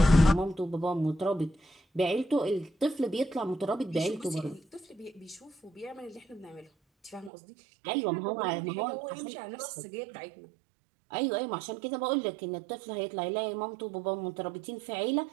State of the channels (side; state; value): left; drops out; at 7.3 s